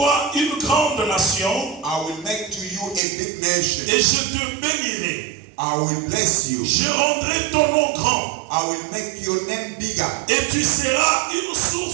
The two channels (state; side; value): drops out; left; at 3.0 s